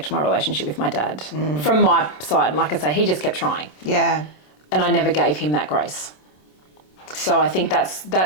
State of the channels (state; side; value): late; right; 27 ms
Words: my relationship with my dad. From my side, and like I say, he just kept trying. Yeah. And I never gave him that grace. So I think